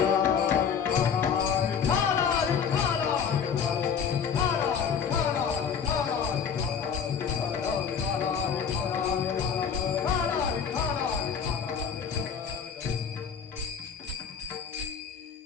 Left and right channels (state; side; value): quieter; right; 6.9 dB